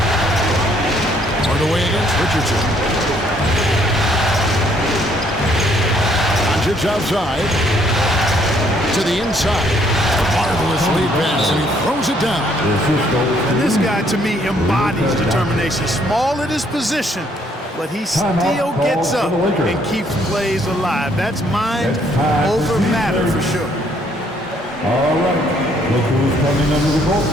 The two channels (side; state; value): both; normal; correlation 0.66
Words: Hardaway against Richardson. Doncic outside. To the inside. Marvelous lead pass, and he throws it down. And this guy, to me, embodies determination. Small at his position, but he still gets up and keeps plays alive. That's mind over matter for sure. All right, look who's coming under the court.